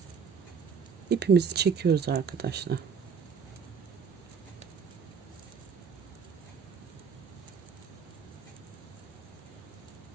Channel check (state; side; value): quieter; left; 6.2 dB